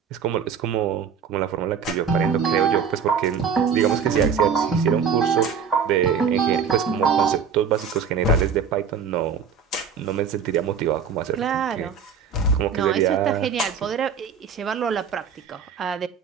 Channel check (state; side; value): quieter; left; 6.5 dB